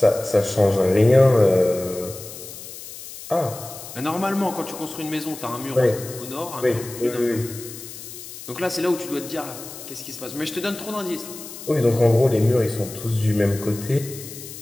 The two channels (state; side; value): noise; left; hiss, 13 dB below the sound